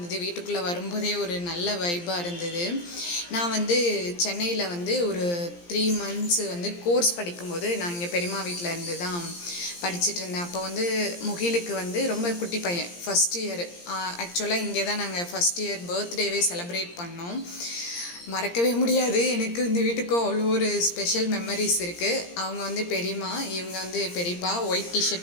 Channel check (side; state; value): right; late; 17 ms